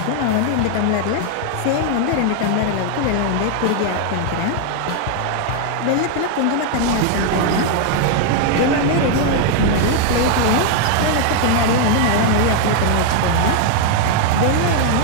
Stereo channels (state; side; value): different; both; correlation 0.00